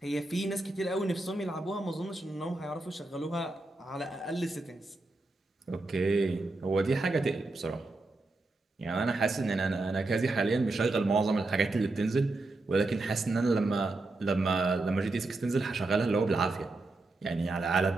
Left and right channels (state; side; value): quieter; left; 3.1 dB